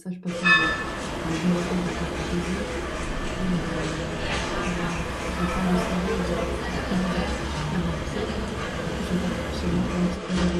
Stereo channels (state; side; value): identical; both; correlation 1.00